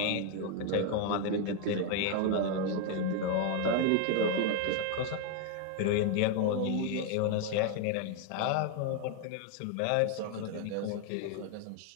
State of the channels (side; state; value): both; different; correlation 0.00